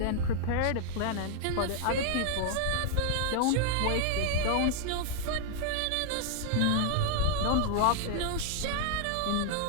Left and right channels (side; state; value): both; different; correlation 0.00